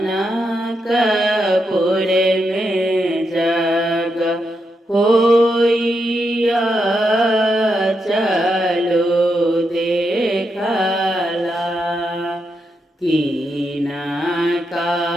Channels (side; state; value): both; normal; correlation 0.83